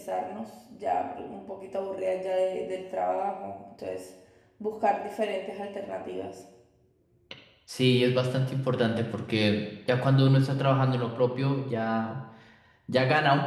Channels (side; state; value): both; identical; correlation 1.00